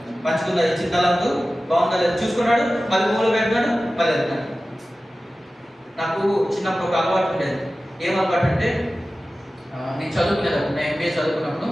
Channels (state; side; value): normal; both; correlation 0.95